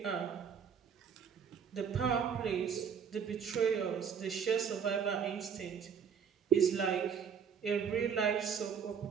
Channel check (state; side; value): quieter; left; 7.1 dB